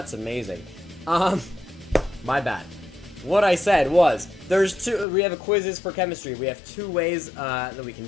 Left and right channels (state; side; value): drops out; right; at 5.1 s